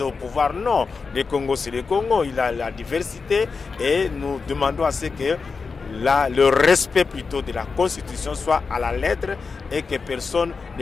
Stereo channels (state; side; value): quieter; right; 4.8 dB